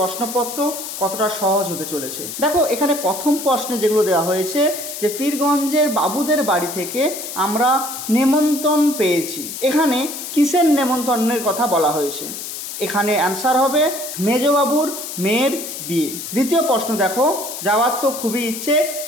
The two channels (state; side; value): noise; left; hiss, 8 dB below the sound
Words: কতটা সহজ হতে চলেছে। দেখো, এখানে প্রথম প্রশ্নে যেগুলো দেওয়া হয়েছে যে পীরগঞ্জের বাবুদের বাড়ি থেকে আমরা নেমন্তন্ন পেয়েছি। এখানে কিসের নেমন্তন্নের কথা বলা হয়েছে? এখানে অ্যান্সার হবে মেজবাবুর মেয়ের বিয়ে। দ্বিতীয় প্রশ্ন দেখো, যাওয়ার তো খুবই ইচ্ছে